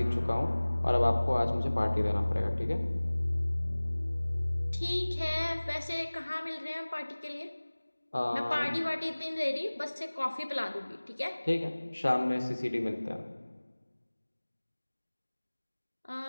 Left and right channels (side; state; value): both; inverted; correlation -1.00